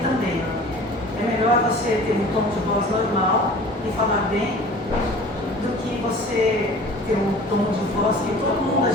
também. É melhor você ter um tom de voz normal e falar bem do que você ter um tom de voz que todo mundo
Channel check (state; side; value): normal; both; correlation 0.44